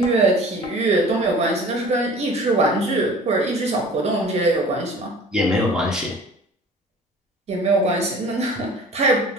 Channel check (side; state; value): both; normal; correlation 0.45